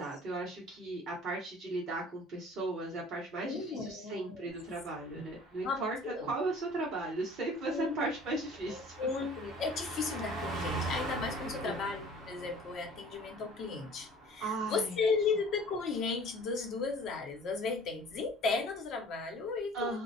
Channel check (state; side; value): normal; both; correlation 0.48